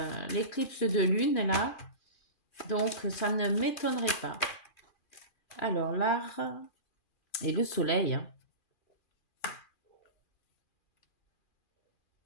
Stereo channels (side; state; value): right; late; 2.4 ms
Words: l'éclipse de lune là, donc ça ne m'étonnerait pas. Alors l'art et le soleil. Hein.